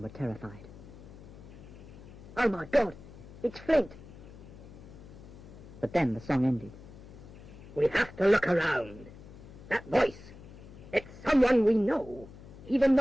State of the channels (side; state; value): left; noise; hum, 17 dB below the sound